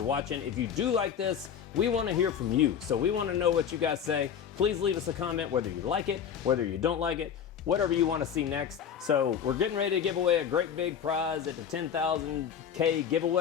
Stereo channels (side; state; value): right; quieter; 8.1 dB